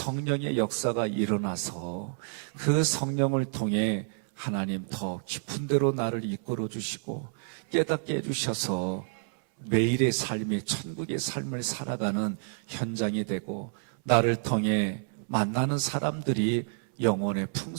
역사가 일어나서 그 성령을 통해 하나님 더 깊은 데로 나를 이끌어 주시고 깨닫게 해주셔서 매일의 삶이 천국의 삶을 살아가는 현장이 되고 나를 통해 만나는 사람들이 영혼의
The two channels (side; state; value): left; silent; 58 dB below the other